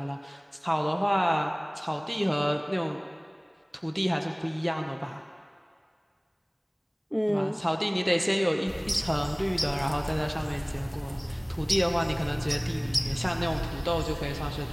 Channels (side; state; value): both; identical; correlation 1.00